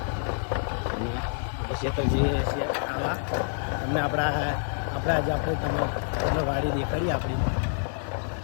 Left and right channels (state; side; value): silent; right; digital silence